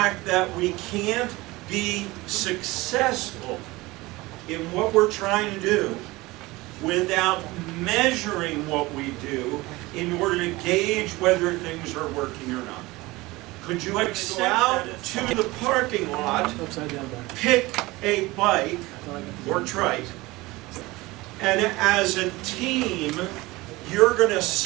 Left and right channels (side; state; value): left; quieter; 21.0 dB